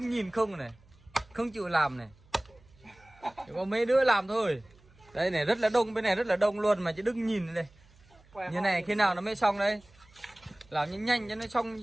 nhìn không này, không chịu làm này. Chỉ có mấy đứa làm thôi. Đây này rất là đông, bên này rất là đông luôn mà chỉ đứng nhìn đây. Như này khi nào nó mới xong đây? Làm nhanh nhanh cho nó xong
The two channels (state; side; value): noise; right; hum, 28 dB below the sound